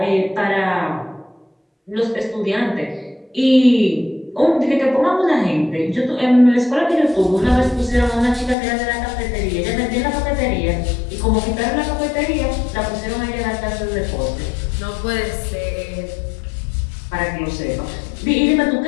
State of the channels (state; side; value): drops out; right; at 8.6 s